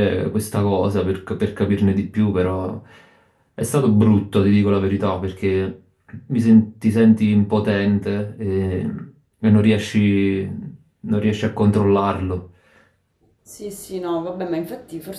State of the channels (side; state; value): both; identical; correlation 1.00